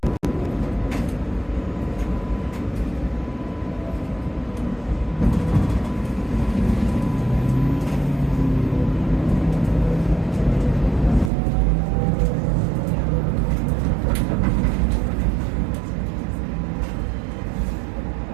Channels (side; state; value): left; drops out; at 11.3 s